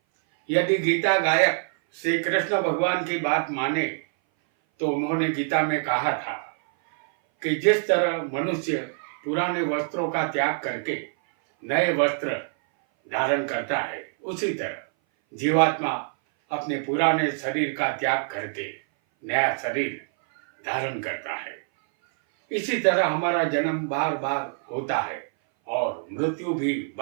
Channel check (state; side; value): silent; left; 58 dB below the other